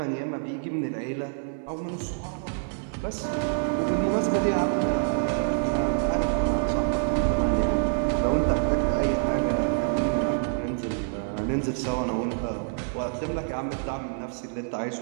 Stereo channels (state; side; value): silent; left; digital silence